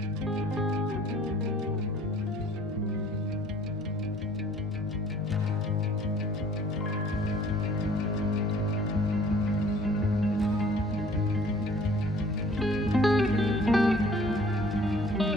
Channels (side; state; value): both; normal; correlation 0.54